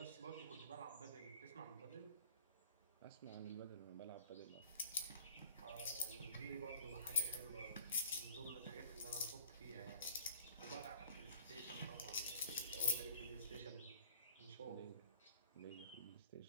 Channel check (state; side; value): inverted; both; correlation -0.50